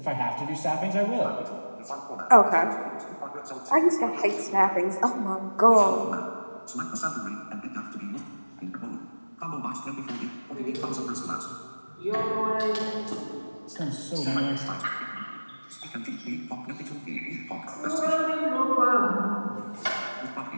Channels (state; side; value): inverted; both; correlation -1.00